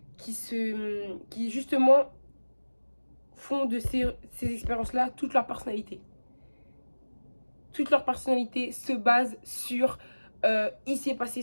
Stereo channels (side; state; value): both; inverted; correlation -1.00